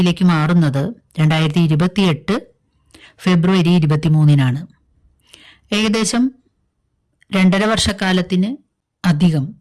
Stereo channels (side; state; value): both; identical; correlation 1.00